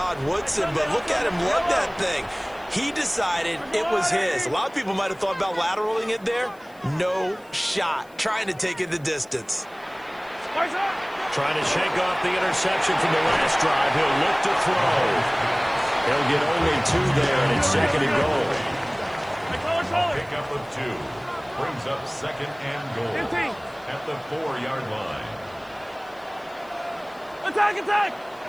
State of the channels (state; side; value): noise; left; hiss, 29 dB below the sound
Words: Woodson, but look at him love that thing. He decided it was his. A lot of people might have thought about lateraling it there. No shot. Trying to take it the distance. Trying to shake off the interception from the last drive. He'll look to throw. He'll get only 2 there, and it's second and goal. Pickup of 2. Brings up second and goal at the 4-yard line. Attack, attack!